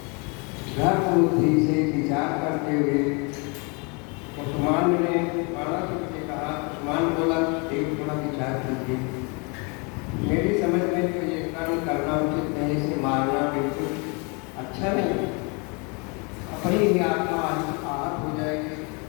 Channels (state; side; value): quieter; right; 32.0 dB